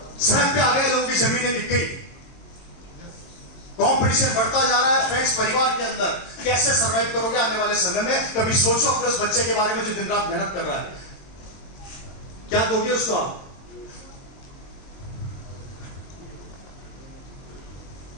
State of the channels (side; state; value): right; late; 22 ms